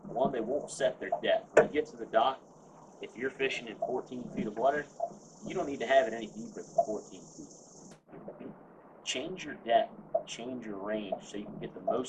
One, they won't set their depth. When you get to the dock, if you're fishing in 14 feet of water, you don't need to have it any deeper than 14 feet. Change your depth, change your range so you can get the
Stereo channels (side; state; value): both; identical; correlation 1.00